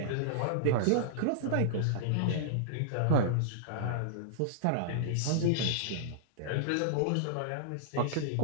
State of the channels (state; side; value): different; both; correlation -0.02